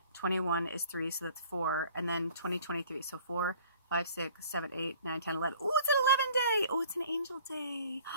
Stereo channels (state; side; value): inverted; both; correlation -0.52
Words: 21 is 3, so that's 4, and then 2023, so 4, 5, 6, 7, 8, 9, 10, 11. Oh, it's an 11 day. Oh, it's an angel day.